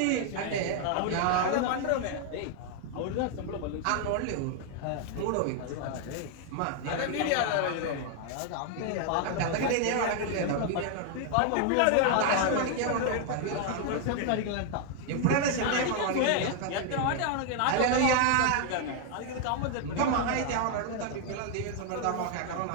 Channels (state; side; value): different; both; correlation 0.00